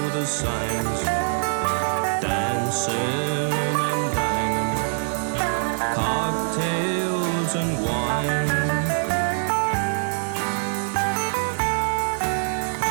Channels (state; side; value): silent; left; digital silence